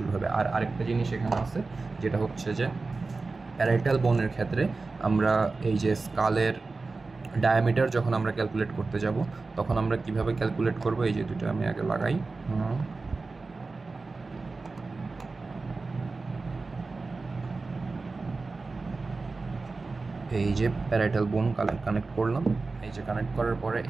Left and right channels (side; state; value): left; quieter; 3.8 dB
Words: হবে। আর আরেকটা জিনিস এখানে আছে যেটা হচ্ছে যে প্যারাইটাল বোনের ক্ষেত্রে আমরা এই যে স্কালের ডায়ামিটার যখন আমরা ক্যালকুলেট করতে যাব তখন আমরা কিভাবে ক্যালকুলেট করব, এই যে দুটো আমি আগে লাগাই। এই যে প্যারাইটাল বোন কানেক্ট করলাম, এই যে কানেক্ট করার পরে